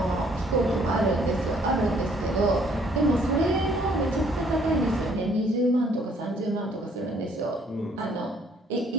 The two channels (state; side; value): normal; both; correlation 0.63